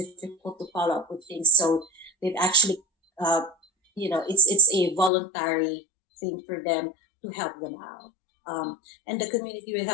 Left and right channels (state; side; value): drops out; right; at 5.1 s